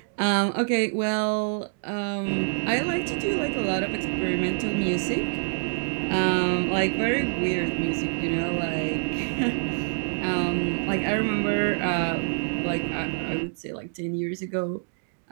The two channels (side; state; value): left; silent; digital silence